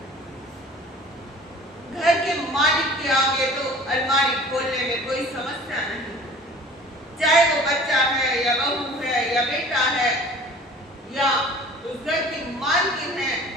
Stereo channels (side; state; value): both; normal; correlation 0.46